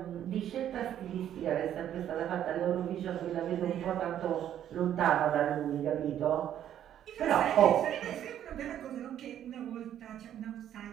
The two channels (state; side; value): quieter; left; 10.7 dB